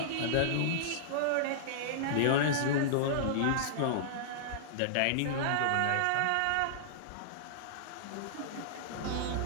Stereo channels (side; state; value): both; different; correlation -0.02